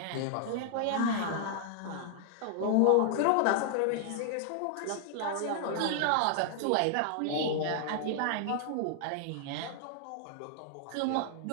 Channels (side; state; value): both; different; correlation -0.01